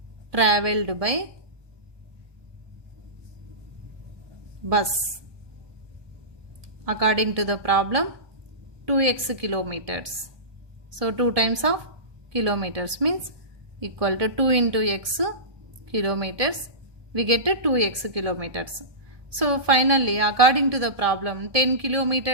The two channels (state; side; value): late; left; 1.7 ms